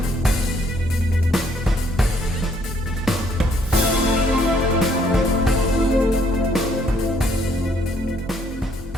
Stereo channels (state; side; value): normal; both; correlation 0.66